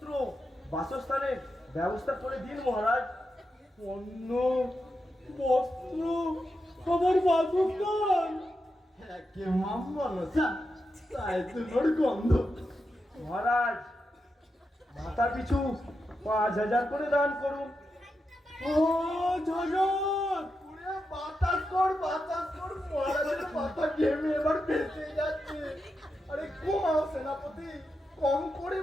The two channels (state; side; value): normal; both; correlation 0.87